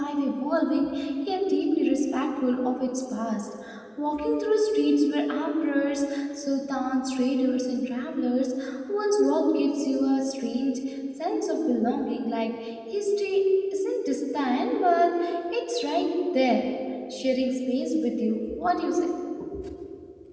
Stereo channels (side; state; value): both; identical; correlation 1.00